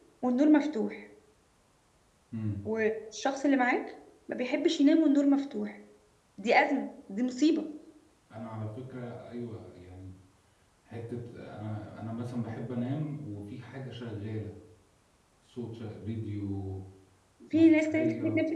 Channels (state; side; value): identical; both; correlation 1.00